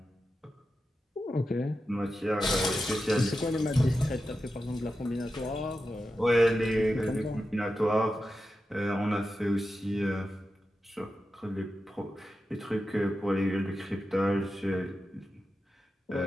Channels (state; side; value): normal; both; correlation 0.91